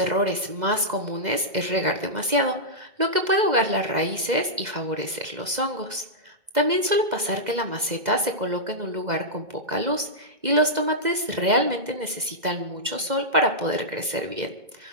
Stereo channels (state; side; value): late; left; 2.0 ms